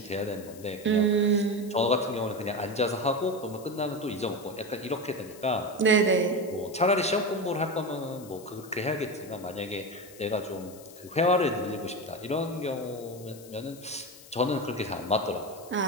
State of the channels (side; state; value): left; noise; hiss, 20 dB below the sound